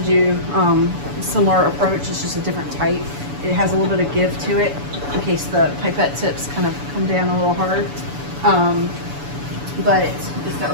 do similar approach. It's just a different type. It has a little bit of give to it in case the pipette tips kind of come down a little hard. But it's got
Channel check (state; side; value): late; left; 7.0 ms